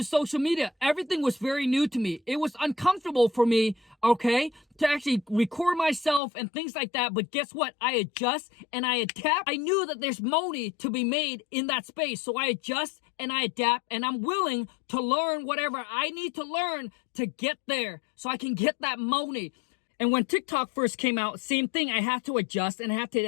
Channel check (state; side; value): drops out; right; at 6.2 s